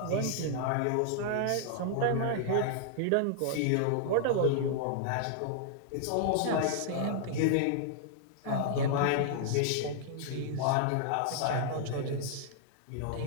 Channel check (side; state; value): both; different; correlation -0.01